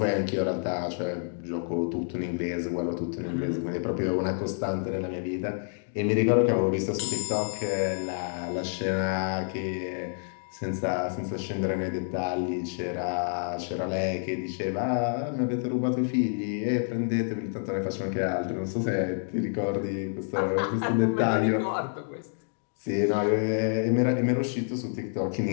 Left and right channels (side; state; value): right; silent; digital silence